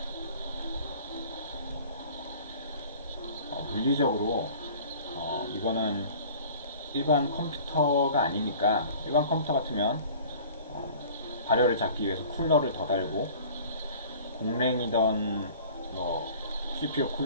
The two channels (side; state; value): both; inverted; correlation -0.47